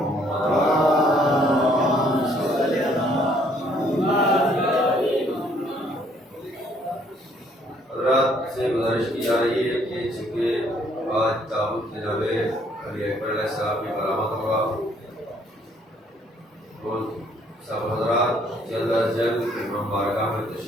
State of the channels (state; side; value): normal; both; correlation 0.65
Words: حضرات سے گزارش کی جا رہی ہے کہ چونکہ آج تابوت جناب علی اکبر علیہ السلام کی برآمد ہوگا تو سب حضرات جلد از جلد امام بارگاہ میں